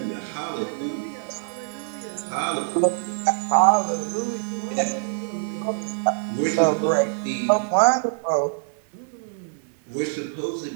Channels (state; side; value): silent; left; 61 dB below the other